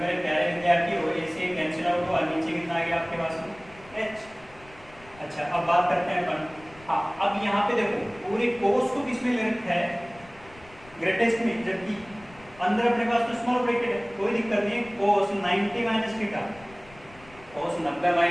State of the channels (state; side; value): noise; left; rumble, 23 dB below the sound